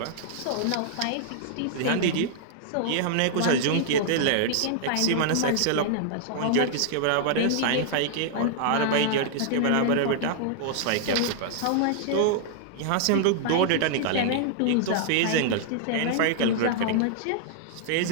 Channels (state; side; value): different; both; correlation -0.01